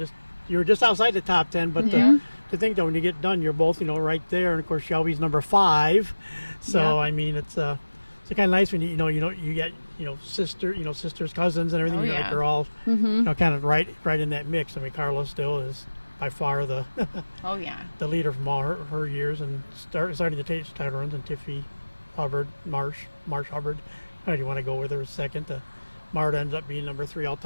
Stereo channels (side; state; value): both; inverted; correlation -1.00